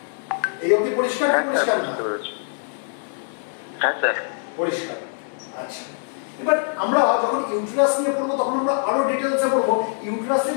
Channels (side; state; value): right; silent; digital silence